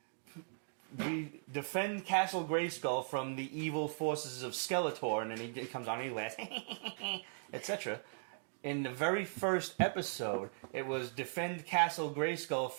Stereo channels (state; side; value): silent; left; digital silence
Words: we defend Castle Grayskull from the evil forces of Skeletor, and then he comes on and he laughs, etc. In the very first episode, it was defend Castle Grayskull